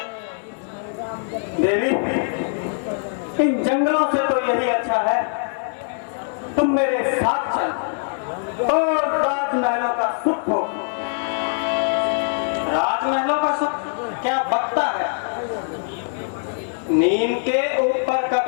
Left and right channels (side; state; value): right; silent; 59 dB below the other